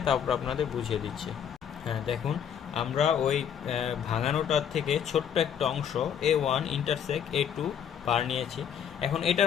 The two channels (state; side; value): quieter; right; 8.5 dB